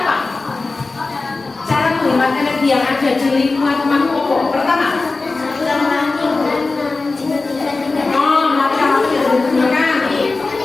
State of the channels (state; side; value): quieter; right; 3.7 dB